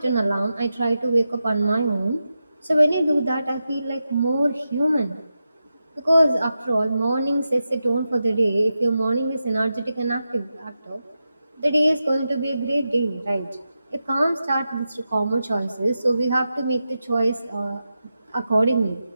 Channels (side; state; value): both; inverted; correlation -0.90